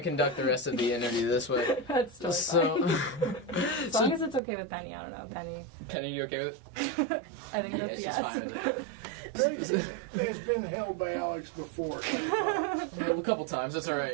conduct the rest of the interview this way. That's totally So, fine. As long as it's okay with Penny. I don't know, Penny. Penny, you okay with it? I think Yeah, that's she's yes. fine with it. It's been held by Alex before. Well, a couple times. That's all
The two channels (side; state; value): left; drops out; at 4.4 s